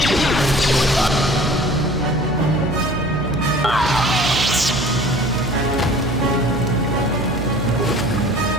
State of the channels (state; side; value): noise; right; hum, 7 dB below the sound